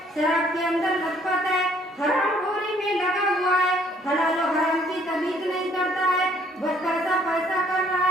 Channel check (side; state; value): both; normal; correlation 0.62